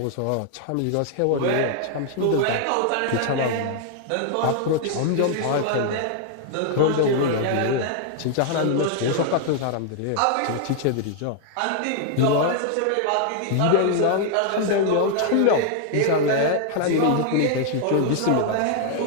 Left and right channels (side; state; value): both; different; correlation 0.00